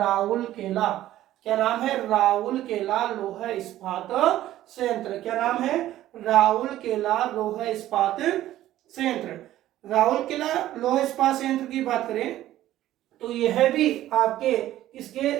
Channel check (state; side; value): quieter; left; 13.9 dB